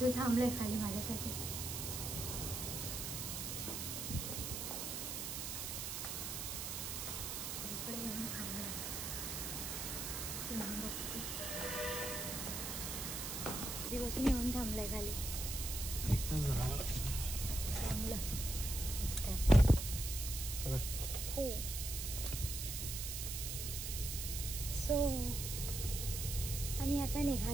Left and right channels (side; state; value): right; noise; hiss, 4 dB below the sound